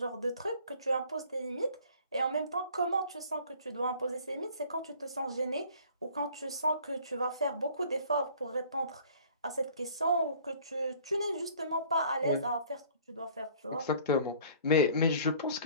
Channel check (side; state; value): both; inverted; correlation -0.52